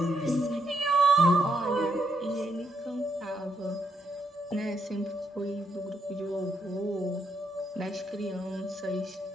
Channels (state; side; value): normal; both; correlation 0.78